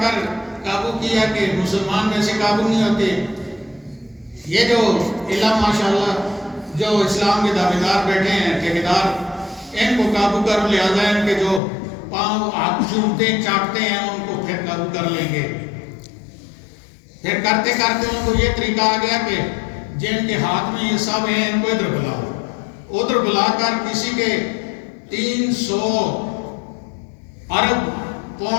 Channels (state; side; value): drops out; right; at 11.6 s